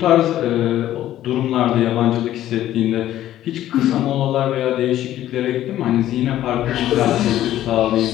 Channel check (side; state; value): right; quieter; 13.0 dB